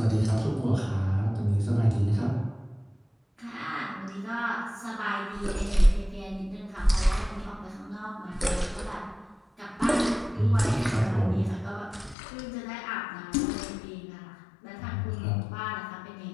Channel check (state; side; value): drops out; right; at 12.2 s